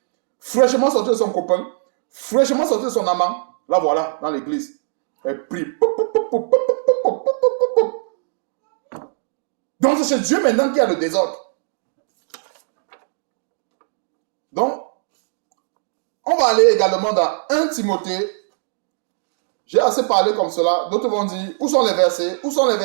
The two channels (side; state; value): left; silent; digital silence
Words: fraîchement sorti de son copain, fraîchement sorti de son amant. Là, voilà, dans l'église. Elle prie. Donc, c'est chez Dieu maintenant qu'il y a le désordre. Donc, on va aller également dans 1 Timothée. J'ai assez parlé comme cela. D'autres vont dire, où sont les versets?